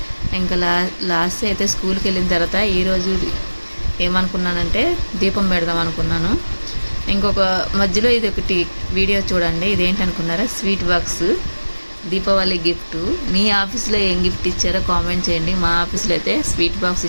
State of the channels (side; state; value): both; inverted; correlation -1.00